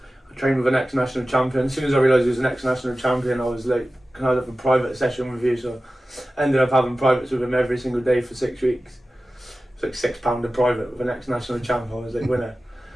I trained with an ex-national champion. As soon as I realised he was an ex-national champion, I was like, can I have a private session with you? So I ended up having privates with him every single day for 6 weeks. It's like £6 a private with an ex-national champ. I was like, winner.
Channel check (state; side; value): normal; both; correlation 0.95